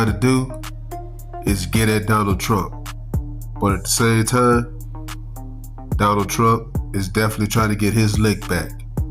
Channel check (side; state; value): both; identical; correlation 1.00